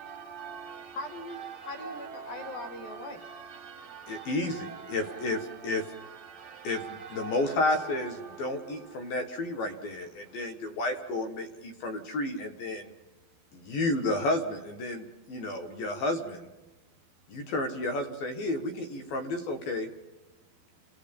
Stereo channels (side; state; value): right; late; 12 ms